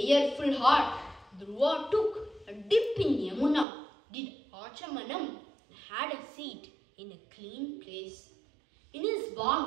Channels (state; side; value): drops out; left; at 3.7 s